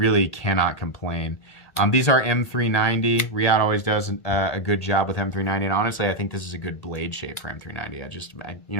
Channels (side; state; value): right; late; 1.8 ms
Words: cannot complain. These are M390. Riyadh always does a good job with M390, and honestly, I think this is a good blade shape for M390. You